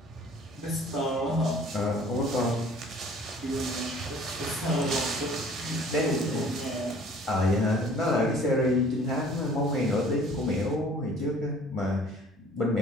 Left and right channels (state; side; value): normal; both; correlation 0.52